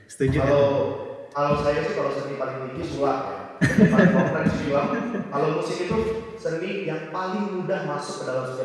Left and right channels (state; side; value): identical; both; correlation 1.00